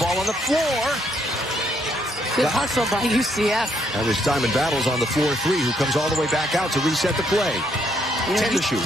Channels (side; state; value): both; normal; correlation 0.72